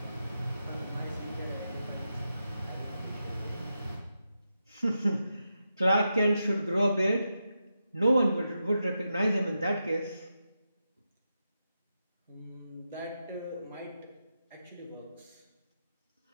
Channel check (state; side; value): inverted; both; correlation -0.87